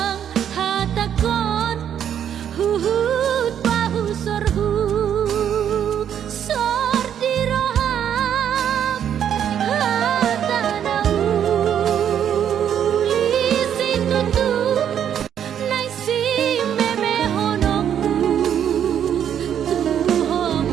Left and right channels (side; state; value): left; quieter; 9.3 dB